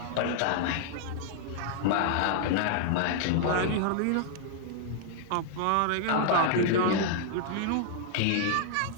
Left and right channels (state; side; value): different; both; correlation 0.00